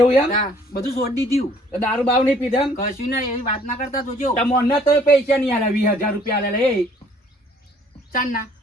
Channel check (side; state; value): both; normal; correlation 0.58